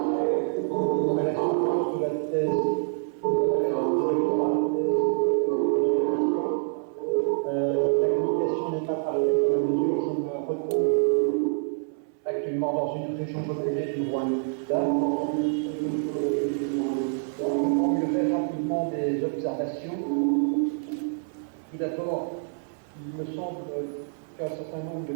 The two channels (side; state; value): left; silent; 61 dB below the other